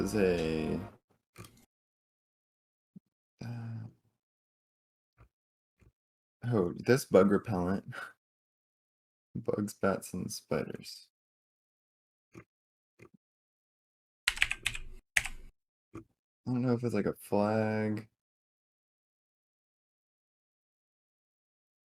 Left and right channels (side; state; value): both; identical; correlation 1.00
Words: a oh, this bug repellent. Bugs, bats, and spiders. I don't know if it's like a flag.